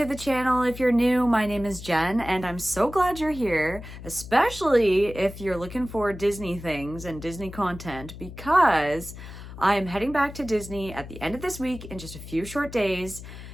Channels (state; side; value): noise; left; hum, 13 dB below the sound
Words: the channel. If you're new, my name is Jen and I'm so glad you're here, especially if you're looking for Disney things and Disney content, because I'm heading back to Disney at the end of this week in just a few short days,